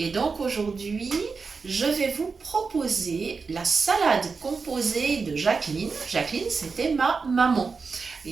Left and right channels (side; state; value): left; quieter; 4.8 dB